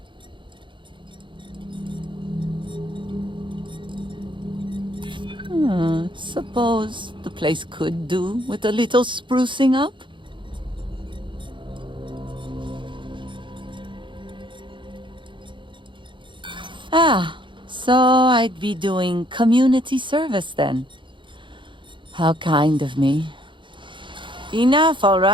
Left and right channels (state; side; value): late; left; 0.23 ms